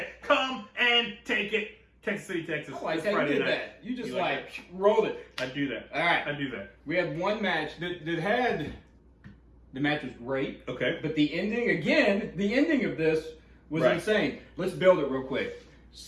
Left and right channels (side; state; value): both; identical; correlation 1.00